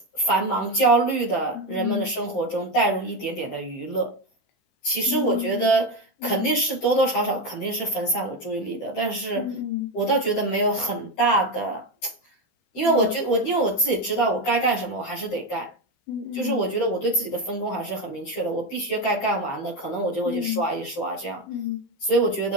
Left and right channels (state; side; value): late; right; 14 ms